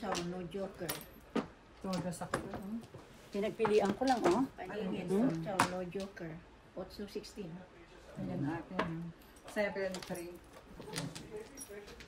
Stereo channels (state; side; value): identical; both; correlation 1.00